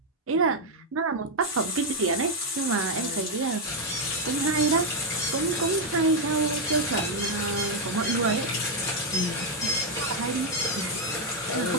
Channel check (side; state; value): both; normal; correlation 0.01